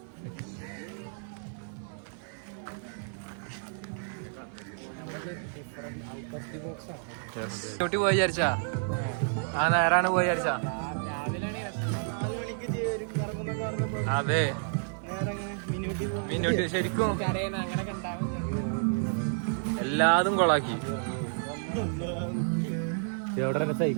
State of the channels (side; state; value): left; silent; 57 dB below the other